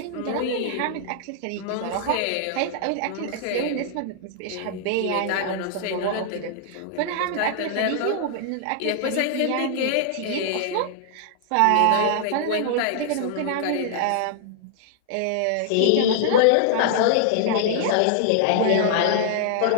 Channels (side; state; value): both; different; correlation -0.01